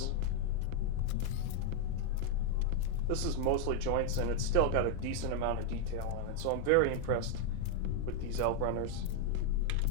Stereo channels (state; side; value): different; both; correlation 0.00